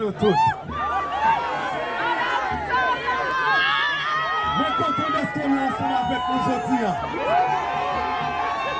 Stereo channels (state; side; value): identical; both; correlation 1.00